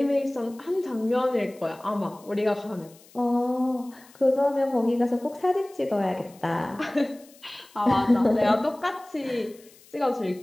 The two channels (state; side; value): noise; left; hiss, 26 dB below the sound